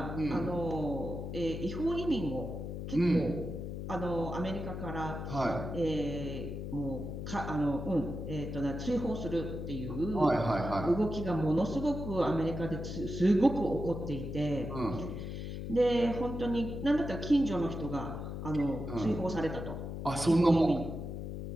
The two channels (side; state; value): left; noise; hum, 6 dB below the sound